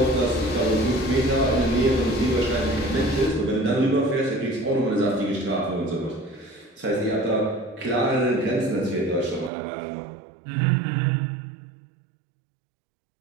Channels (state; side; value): drops out; left; at 9.5 s